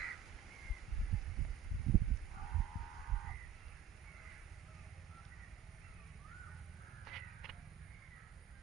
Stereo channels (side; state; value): left; quieter; 8.5 dB